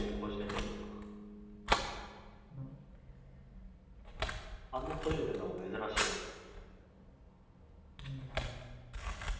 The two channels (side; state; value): both; identical; correlation 1.00